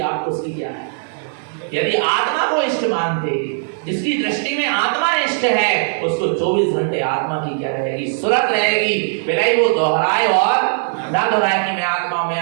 आपको उसकी क्या है। यदि आत्मा को इष्ट मानते, जिसकी दृष्टि में आत्मा इष्ट है, उसको 24 घंटे आत्मा की क्या रहेगी? सुरत रहेगी। भले वो दोहराए और ना दोहराए कि मैं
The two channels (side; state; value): left; silent; digital silence